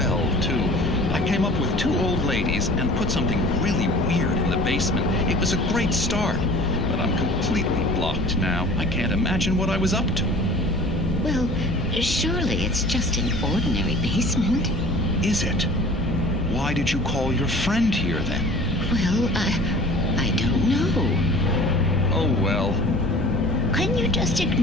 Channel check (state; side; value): normal; both; correlation 0.45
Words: too. I came up with 2 old ladies and put something really weird in the basement. It was a great start, but I'm completely blocked now. I can't imagine what I was up to. Well, surely it's just an ordinary basement. Is it? Why did you call your friend here, then? Well, I don't know. Oh, well. Couldn't you just